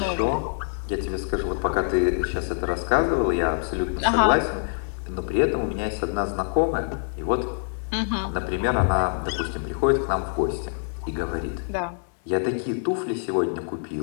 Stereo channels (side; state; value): right; silent; 60 dB below the other